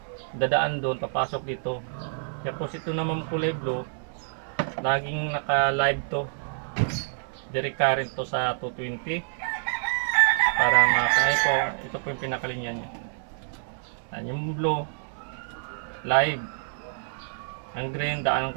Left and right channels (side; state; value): left; silent; digital silence